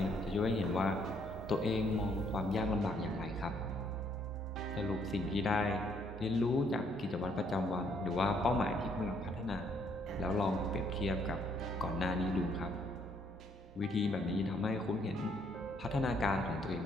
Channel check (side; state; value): both; normal; correlation 0.68